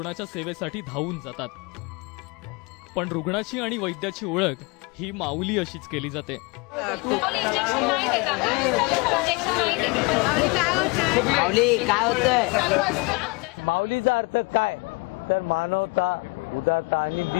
सेवेसाठी धावून जातात। पण रुग्णाची आणि वैद्याची ओळख ही माऊली अशीच केली जाते। माऊली काय होतंय? माऊलीचा अर्थ काय तर मानवता, उदारता आणि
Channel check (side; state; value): right; quieter; 27.6 dB